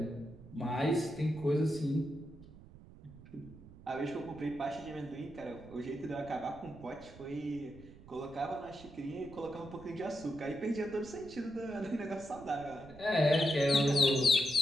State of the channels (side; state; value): right; noise; rumble, 19 dB below the sound